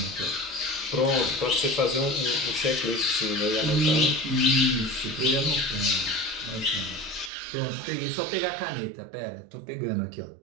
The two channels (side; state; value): left; drops out; at 7.3 s